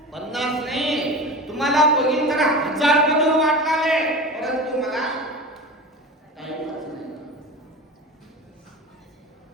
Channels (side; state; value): both; normal; correlation 0.31